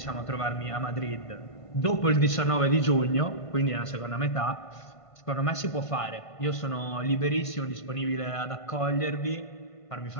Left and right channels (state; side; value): late; right; 1.5 ms